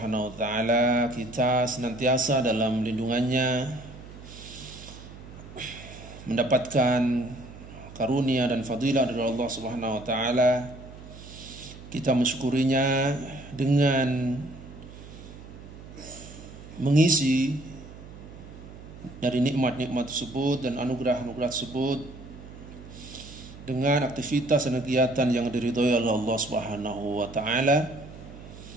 wa taala, kita senantiasa dalam lindungannya, mendapatkan karunia dan fadilah dari Allah Subhanahu wa taala. Kita mensyukurinya dengan mengisi dari nikmat-nikmat tersebut dan anugerah-anugerah tersebut dengan aktivitas dan kegiatan yang diridhoi oleh Allah Subhanahu wa taala.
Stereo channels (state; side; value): noise; right; hum, 16 dB below the sound